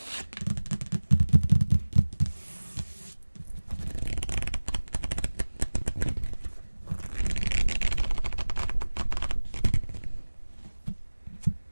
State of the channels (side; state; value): both; inverted; correlation -1.00